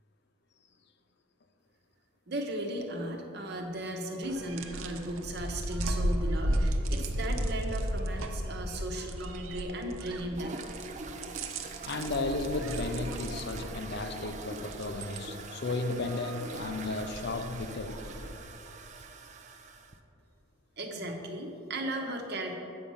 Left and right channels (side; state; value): both; normal; correlation 0.54